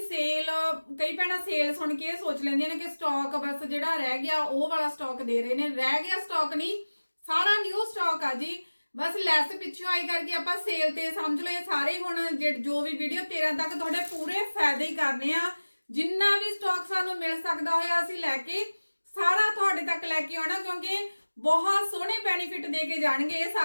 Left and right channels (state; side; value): inverted; both; correlation -1.00